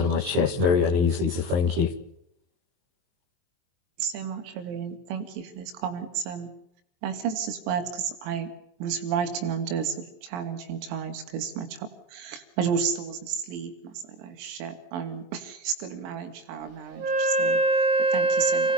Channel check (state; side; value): late; left; 23 ms